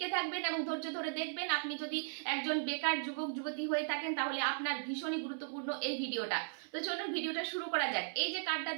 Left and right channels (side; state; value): left; silent; 53 dB below the other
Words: থাকবেন এবং ধৈর্য ধরে দেখবেন। আপনি যদি একজন বেকার যুবক যুবতী হয়ে থাকেন তাহলে আপনার ভীষণই গুরুত্বপূর্ণ এই ভিডিওটা। তো চলুন ভিডিওটা শুরু করা যাক। এই যে কার্ডটা